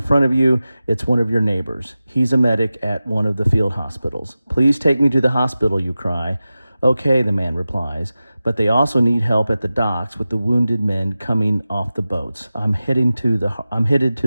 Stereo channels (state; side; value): inverted; both; correlation -0.95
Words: front of you. It's one of your neighbors. He's a medic at one of the field hospitals. Please take me to the hospital, you cry. Okay, the man replies, but they also need help at the docks with the wounded men coming off the boats. I'm headed to